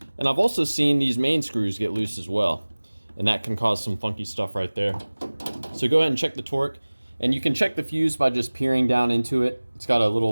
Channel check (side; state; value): both; inverted; correlation -1.00